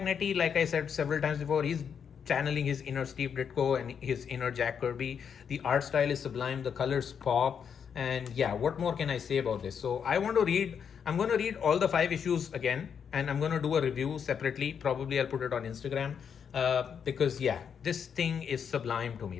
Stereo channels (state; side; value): quieter; right; 7.3 dB